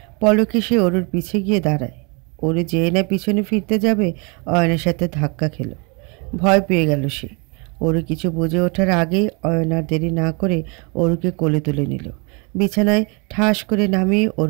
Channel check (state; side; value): quieter; left; 32.2 dB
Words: পলকে সে অরুর পিছে গিয়ে দাঁড়ায়। অরু যেয়ে না পিছনে ফিরতে যাবে, অয়নের সাথে ধাক্কা খেল। ভয় পেয়ে গেল সে। অরু কিছু বুঝে ওঠার আগেই অয়ন আর দেরি না করে অরুকে কোলে তুলে নিল। বিছানায় ঠাস করে নামিয়ে